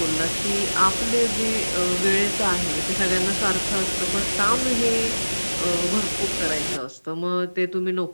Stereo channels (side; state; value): both; inverted; correlation -1.00